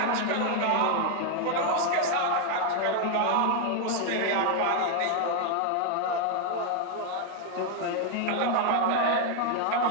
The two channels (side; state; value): both; different; correlation 0.00